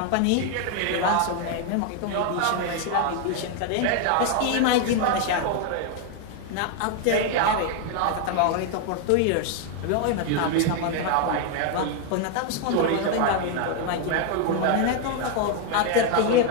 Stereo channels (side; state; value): both; different; correlation 0.00